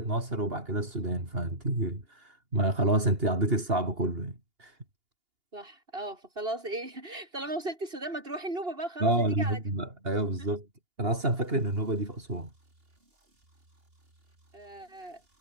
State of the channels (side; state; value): left; late; 2.8 ms